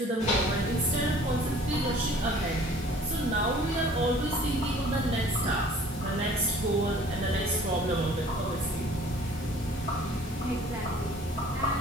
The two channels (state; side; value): normal; both; correlation 0.51